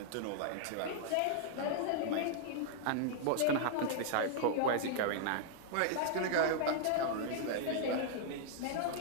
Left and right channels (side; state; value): both; different; correlation -0.01